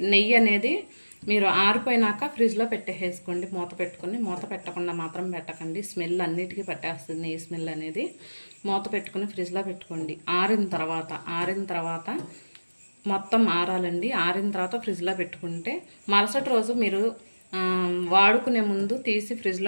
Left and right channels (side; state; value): both; inverted; correlation -1.00